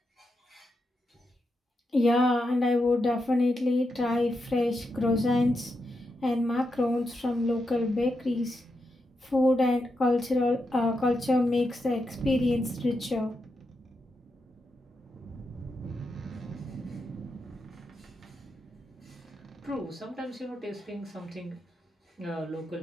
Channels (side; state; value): both; normal; correlation 0.85